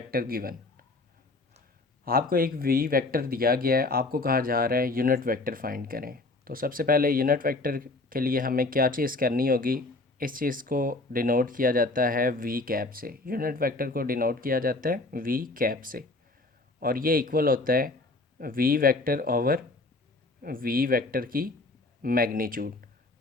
given. आपको एक वी वेक्टर दिया गया है, आपको कहा जा रहा है यूनिट वेक्टर फाइंड करें। तो सबसे पहले यूनिट वेक्टर के लिए हमें क्या चीज़ करनी होगी, इस चीज़ को डिनोट किया जाता है वी कैप से। यूनिट वेक्टर को डिनोट किया जाता है वी कैप से, और ये इक्वल होता है v vector over v vector की मैग्नीट्यूड।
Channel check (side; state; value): right; quieter; 3.1 dB